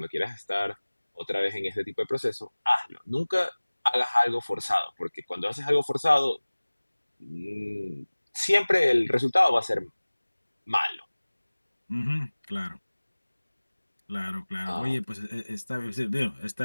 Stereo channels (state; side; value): inverted; both; correlation -1.00